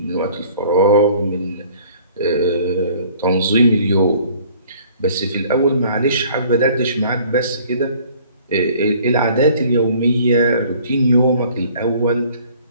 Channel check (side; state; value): both; inverted; correlation -0.54